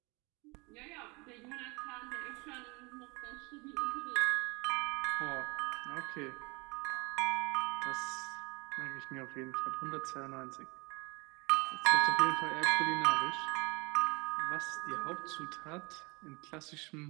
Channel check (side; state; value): left; quieter; 27.2 dB